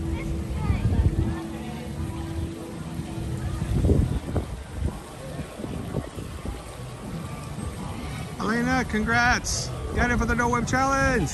Elena, congrats! Got it for the No Whip Challenge!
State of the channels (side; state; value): both; identical; correlation 1.00